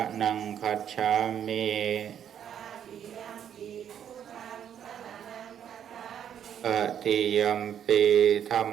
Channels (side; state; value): left; quieter; 9.2 dB